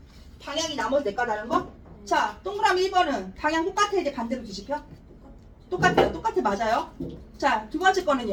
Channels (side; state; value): both; identical; correlation 1.00